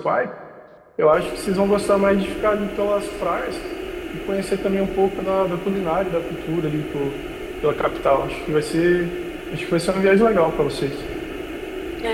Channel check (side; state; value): both; identical; correlation 1.00